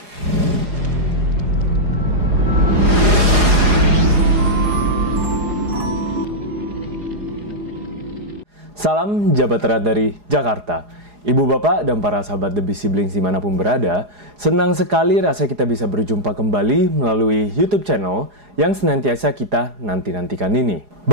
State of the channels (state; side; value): late; left; 4.8 ms